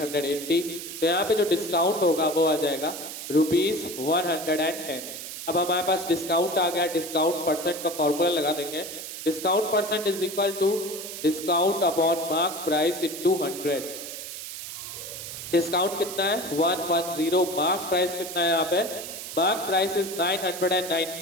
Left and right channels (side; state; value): right; noise; hiss, 9 dB below the sound